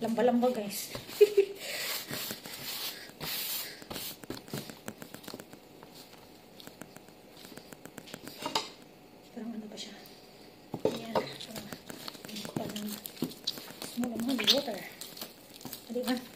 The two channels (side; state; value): both; identical; correlation 1.00